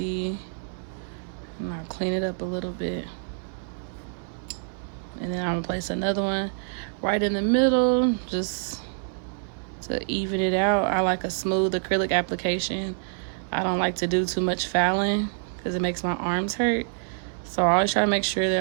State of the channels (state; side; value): silent; left; digital silence